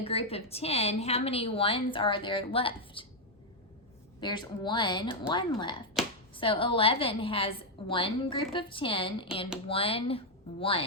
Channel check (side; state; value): both; normal; correlation 0.00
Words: group of 10, how many ones are there left? There's one left. So 11 has one group of 10 and one